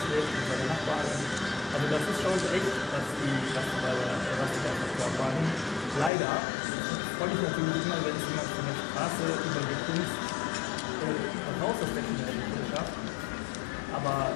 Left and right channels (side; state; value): right; drops out; at 6.1 s